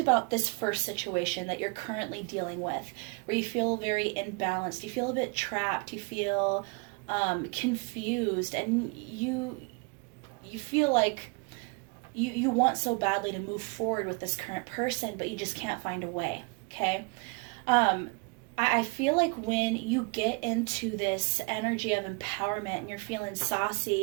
this first situation that you're currently dealing with, where you feel very imbalanced, you feel a bit trapped, you feel confused, and you feel like you want so badly to move forward with this current person, but you just can't find a way, okay? I feel like when you get into this energy of empowerment and you're feeling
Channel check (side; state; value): left; quieter; 31.6 dB